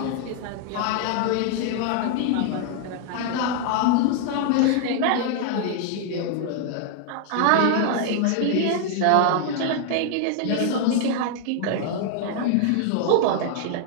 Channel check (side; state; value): both; different; correlation 0.00